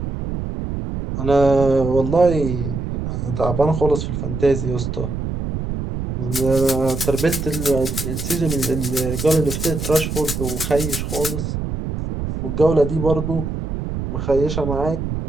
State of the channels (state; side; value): noise; right; rumble, 4 dB below the sound